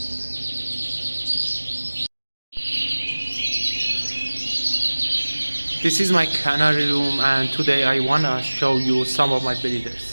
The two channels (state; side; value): inverted; both; correlation -1.00